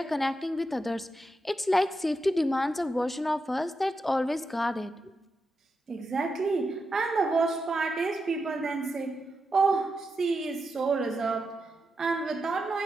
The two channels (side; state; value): both; normal; correlation 0.87